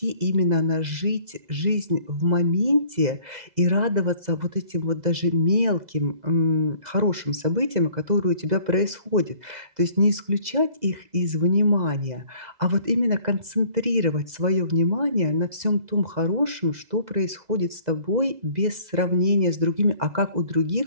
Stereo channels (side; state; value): left; late; 2.0 ms